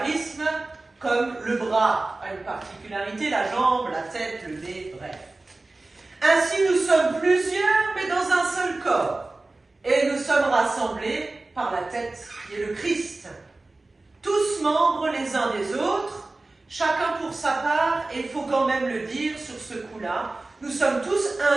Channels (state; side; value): quieter; left; 3.2 dB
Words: comme le bras a une particularité, la jambe, la tête, le nez, bref. Ainsi, nous sommes plusieurs, mais dans un seul corps. Et nous sommes rassemblés par la tête, qui est le Christ. Tous membres les uns des autres, chacun pour sa part, et il faut quand même le dire sur ce coup-là, nous sommes tous